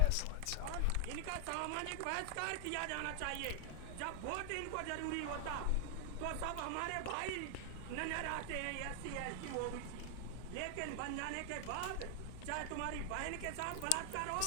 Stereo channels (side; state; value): both; different; correlation 0.00